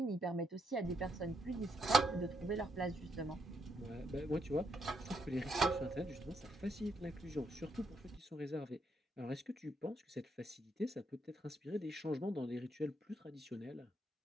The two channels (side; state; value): both; normal; correlation 0.76